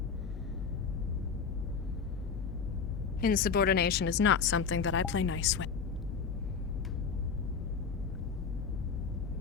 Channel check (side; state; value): right; quieter; 5.8 dB